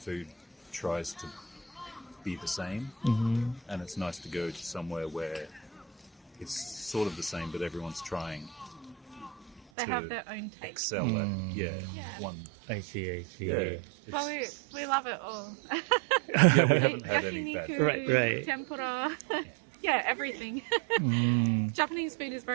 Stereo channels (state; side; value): drops out; left; at 9.6 s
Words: tries to be the same, and it's nice to go to somewhere where it's sort of the same, but everyone's trying They to have their own taste. excel at one. I see. Yeah, But we love it all. yeah, we haven't had any bad. Yakiniku, Right. tempura. Yeah, everything. Japanese food is